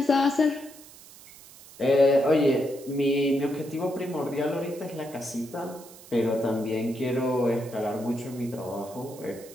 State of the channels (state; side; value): noise; right; hiss, 20 dB below the sound